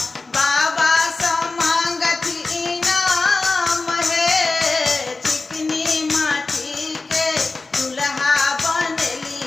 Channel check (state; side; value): quieter; right; 3.7 dB